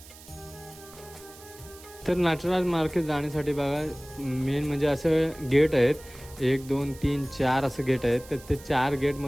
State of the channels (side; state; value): right; noise; hiss, 20 dB below the sound